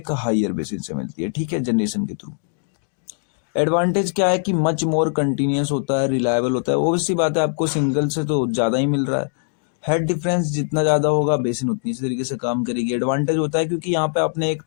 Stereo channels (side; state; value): right; silent; digital silence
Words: हायर बेसिन से मिलती है, ठीक है, जनरेशन के थ्रू। एडवांटेज क्या है कि मच मोर कंटिन्यूअस होता है, रिलायबल होता है। ऑब्वियस सी बात है आपको सिंगल से तो ज़्यादा ही मिल रहा है। हेड डिफरेंस जितना ज़्यादा होगा बेसिन उतनी इसी तरीके से काम करेगी। एडवांटेज होता है क्योंकि यहाँ पे आपने एक